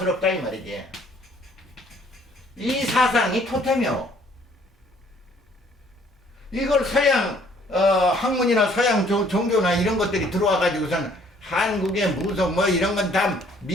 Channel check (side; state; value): both; normal; correlation 0.61